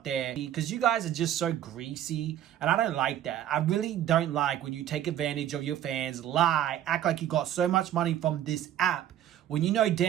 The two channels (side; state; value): left; quieter; 11.4 dB